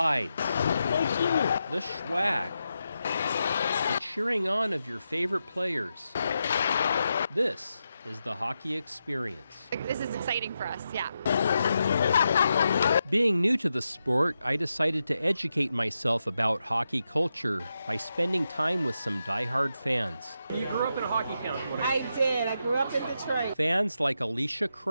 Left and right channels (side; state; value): both; inverted; correlation -0.87